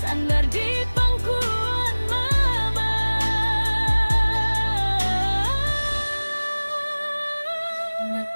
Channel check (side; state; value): both; inverted; correlation -1.00